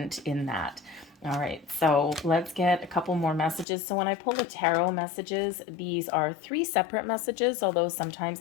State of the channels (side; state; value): right; drops out; at 3.7 s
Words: in that. All right, so let's get a couple more messages. So when I pull the tarot messages, these are 3 separate messages, although sometimes